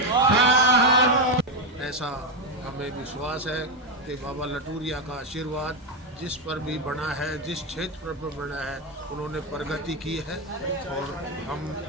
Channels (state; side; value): normal; both; correlation 0.08